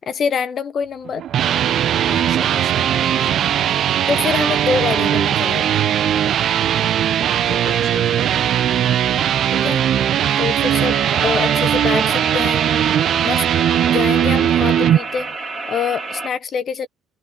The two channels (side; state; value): left; quieter; 6.3 dB